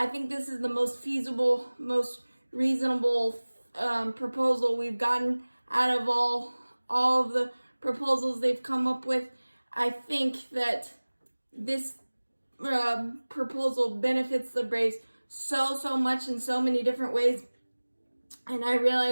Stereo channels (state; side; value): inverted; both; correlation -1.00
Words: think this is the most feasible, most reasonable proposal we've gotten out of all of the proposals they've come up with. I think that this proposal benefits the Braves so much in so many different ways. And I